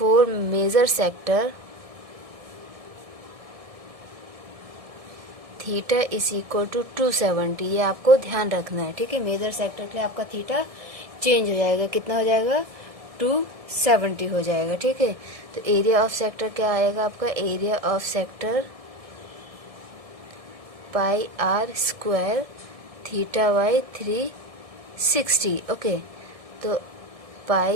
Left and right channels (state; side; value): late; left; 1.7 ms